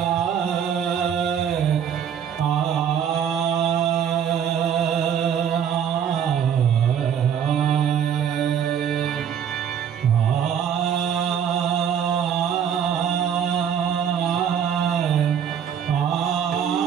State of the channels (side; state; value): left; quieter; 8.4 dB